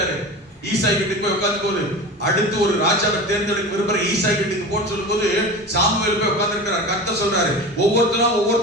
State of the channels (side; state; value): both; normal; correlation 0.31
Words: ஈசாய் வீட்டுக்கு போய் உட்கார்ந்து போது, அடுத்து ஒரு ராஜாவை தேர்ந்தெடுக்க விரும்புற ஈசாய் வீட்டுக்கு போன்னு சொல்லும் போது சாமுவேல் போய் உட்கார்ந்து இருக்கிறார். கர்த்தர் சொல்றாரு,